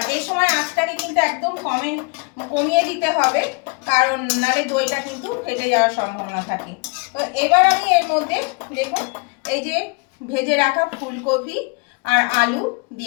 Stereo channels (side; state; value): right; quieter; 31.0 dB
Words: এই সময় আঁচটাকে কিন্তু একদম কমিয়ে দিতে হবে, কারণ নালে দইটা কিন্তু ফেটে যাওয়ার সম্ভাবনা থাকে। তো এবার আমি এর মধ্যে দেখুন এই যে ভেজে রাখা ফুলকপি আর আলু